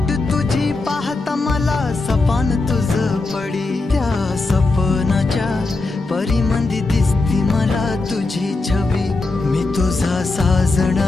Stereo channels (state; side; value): quieter; right; 3.4 dB